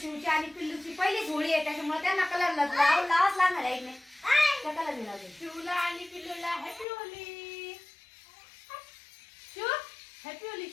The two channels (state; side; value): drops out; right; at 6.9 s